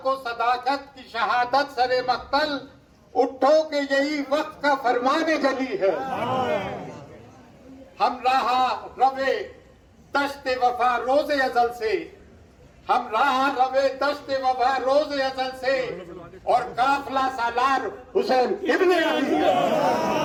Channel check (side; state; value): both; identical; correlation 1.00